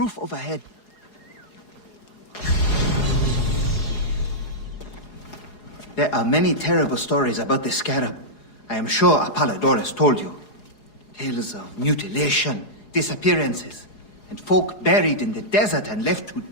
overhead. There are many terrible stories about the Scarab. I am sure Apollodorus told you. Tales of mutilation, disappearances, and folk buried in the desert and left to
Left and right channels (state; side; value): late; right; 4.8 ms